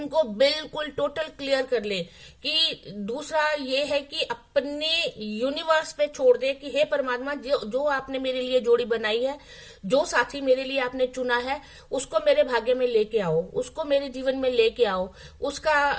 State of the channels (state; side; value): identical; both; correlation 1.00